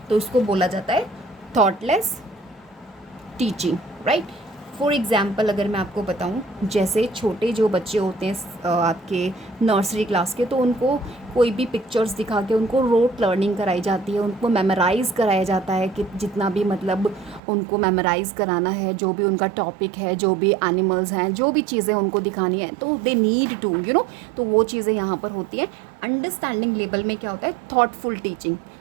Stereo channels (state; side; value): drops out; left; at 17.4 s